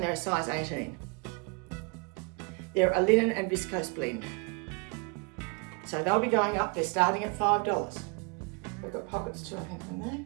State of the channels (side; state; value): left; quieter; 30.8 dB